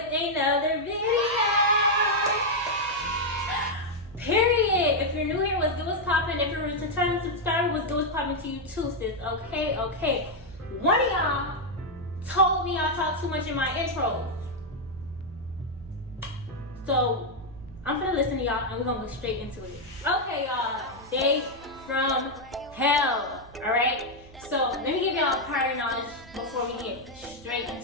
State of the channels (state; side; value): noise; right; hum, 21 dB below the sound